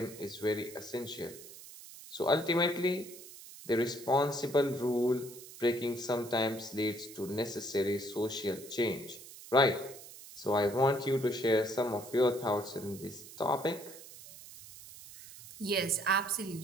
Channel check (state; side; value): noise; right; hiss, 16 dB below the sound